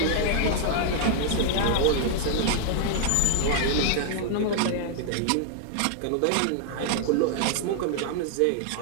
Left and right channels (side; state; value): both; different; correlation 0.00